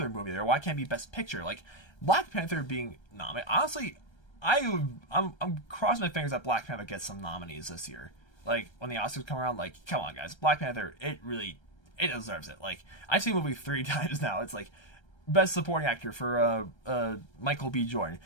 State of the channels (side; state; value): right; late; 1.3 ms